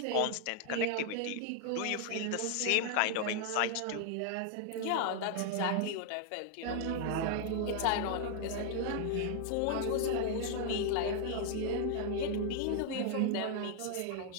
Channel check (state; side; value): different; both; correlation 0.00